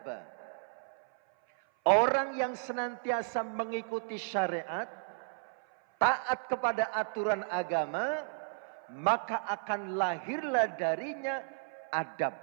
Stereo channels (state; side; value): silent; left; 55 dB below the other